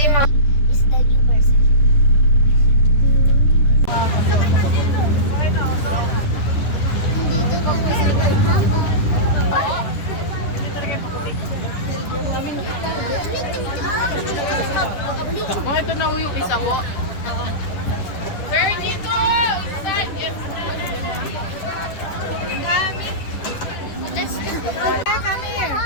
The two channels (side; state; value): right; late; 10 ms